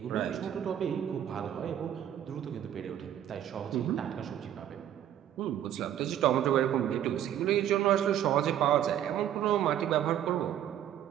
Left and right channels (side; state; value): left; quieter; 10.8 dB